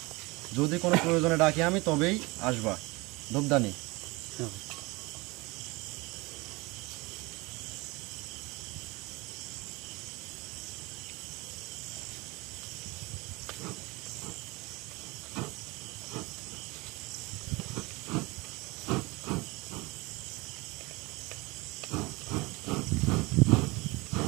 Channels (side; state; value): left; quieter; 24.3 dB